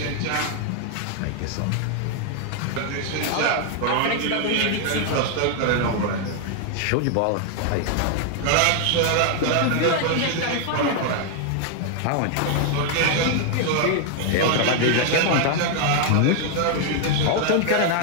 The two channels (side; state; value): both; different; correlation 0.00